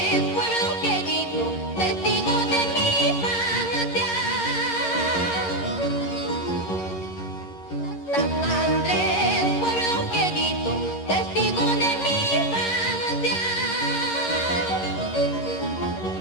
pueblo querido, testigo de mi infancia. San Andrés, pueblo querido, testigo de mi infancia.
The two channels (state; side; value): late; right; 11 ms